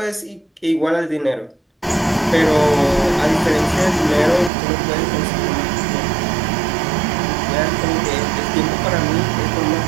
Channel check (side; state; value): left; drops out; at 4.5 s